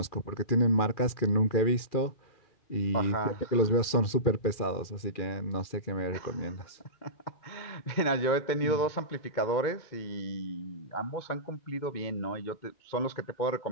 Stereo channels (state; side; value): late; right; 2.3 ms